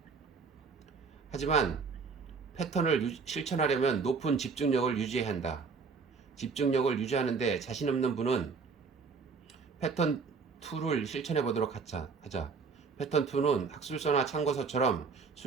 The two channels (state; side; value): quieter; left; 5.0 dB